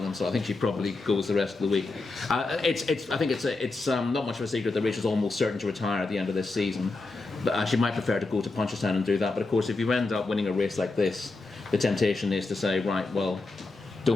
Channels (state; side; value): quieter; right; 3.4 dB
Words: so I think she probably goes the rest of the week. I think it's not much of a secret that Rachel's almost certain to retire at the end of this season. But she might prefer to go to Punchestown and do that. But of course, if you end up winning a race like this, the temptation is to say, right, well,